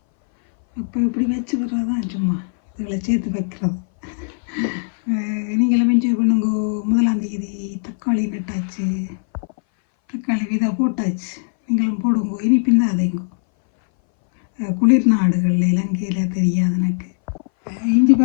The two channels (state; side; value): silent; right; 61 dB below the other